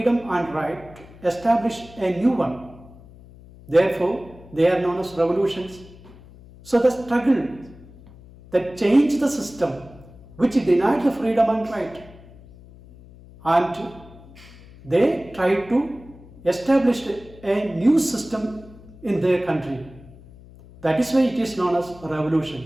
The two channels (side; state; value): left; noise; hum, 21 dB below the sound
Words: and right to establish a new one. Therefore, they are known as revolutions. So the struggle that changed the system which denied the freedom and right, and they tried to establish a new system in their country. That is why it is known as